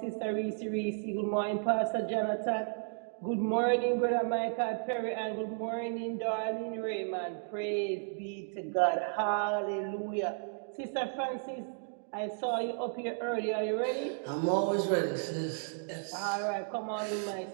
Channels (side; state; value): left; silent; digital silence